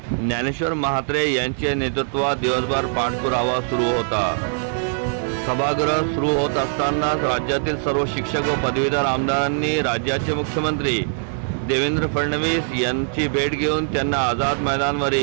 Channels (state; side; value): silent; left; 64 dB below the other